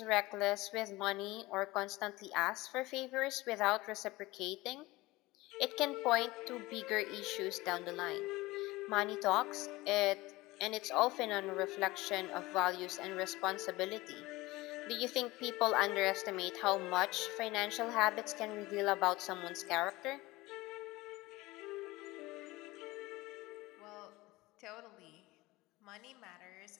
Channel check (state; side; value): quieter; right; 20.2 dB